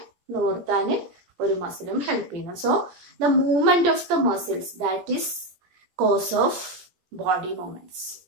നിവർത്താൻ ഒരു മസിലും ഹെൽപ്പ് ചെയ്യുന്നു. So the movement of the muscles that is cause of body movements,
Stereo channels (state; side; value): late; left; 17 ms